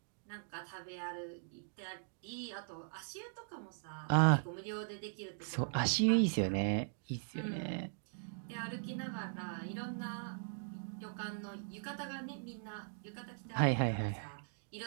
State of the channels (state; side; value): silent; left; digital silence